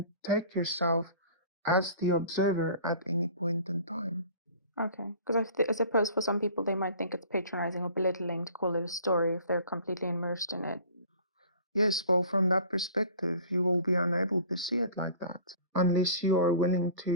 take yourself as the observer at any point in time. Okay. Because I suppose for some people they might think it's patronizing or belittling to call it a story if they're completely immersed in it. Yes, well, from that perspective, you will be unable to see it like that unless you are willing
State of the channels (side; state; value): both; inverted; correlation -0.46